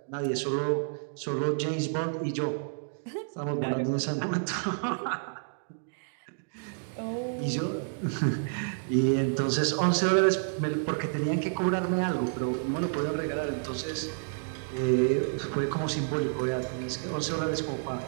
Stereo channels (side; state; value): left; silent; digital silence